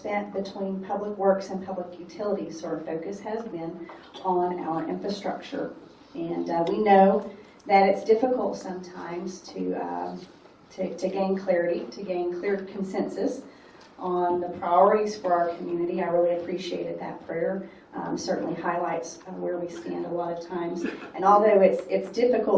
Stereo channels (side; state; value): both; identical; correlation 1.00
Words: between public works and public utilities. So our focus has been on our infrastructure. And we know that it's difficult sometimes to gain clarity, to gain clear consensus on the priorities for our community. I really appreciated that prayer. Certainly highlights where we stand a lot of times. And although it's